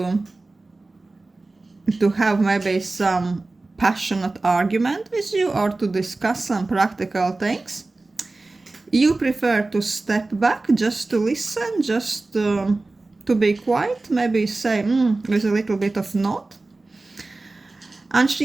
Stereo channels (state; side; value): quieter; left; 3.2 dB